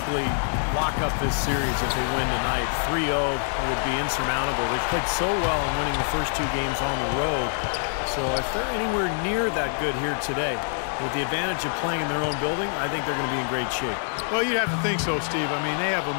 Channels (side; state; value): right; silent; 58 dB below the other